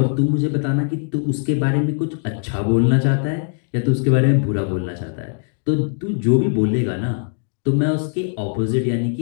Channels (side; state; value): right; silent; digital silence